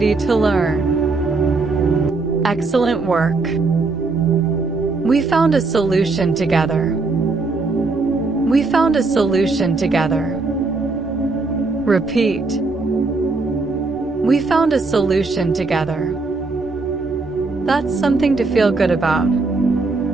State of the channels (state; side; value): quieter; left; 3.7 dB